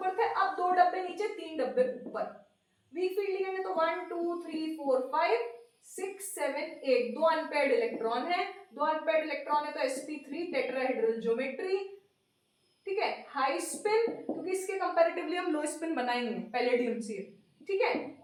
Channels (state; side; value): identical; both; correlation 1.00